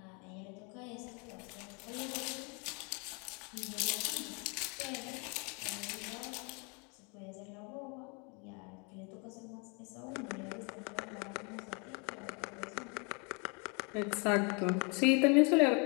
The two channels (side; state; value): right; quieter; 33.2 dB